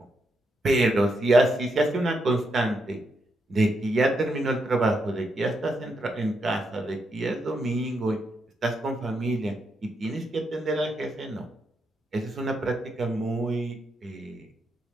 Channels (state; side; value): normal; both; correlation 0.81